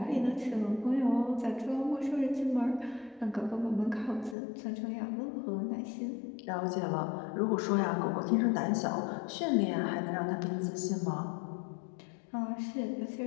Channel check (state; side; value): drops out; right; at 4.4 s